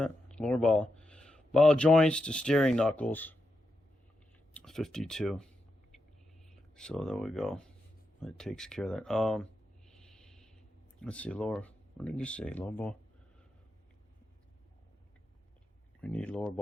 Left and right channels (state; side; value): normal; both; correlation 0.86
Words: Lower ball joints to steering knuckles. 52. So there we go. That takes care of that. Let's see, lower. What did you say? Lower ball. We need lower